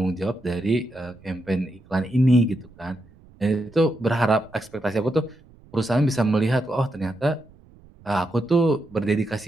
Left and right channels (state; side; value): noise; right; rumble, 26 dB below the sound